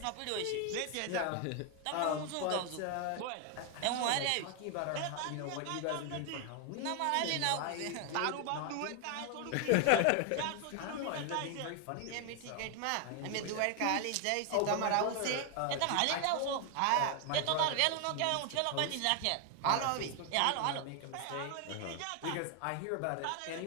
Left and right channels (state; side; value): different; both; correlation 0.01